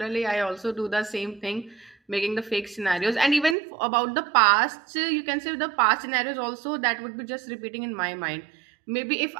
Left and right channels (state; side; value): drops out; left; at 3.6 s